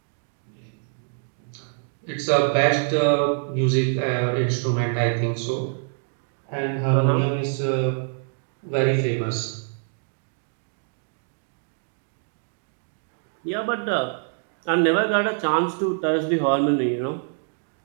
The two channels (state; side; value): silent; left; 58 dB below the other